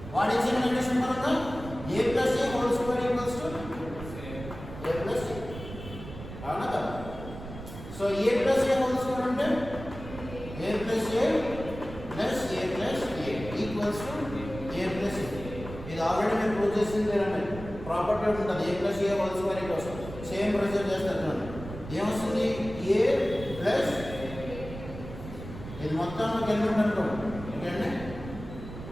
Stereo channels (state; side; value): noise; right; rumble, 12 dB below the sound